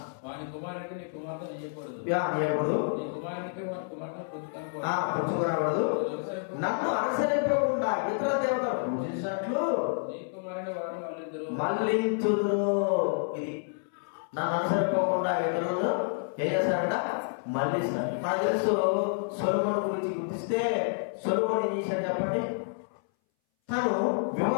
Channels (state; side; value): silent; right; 58 dB below the other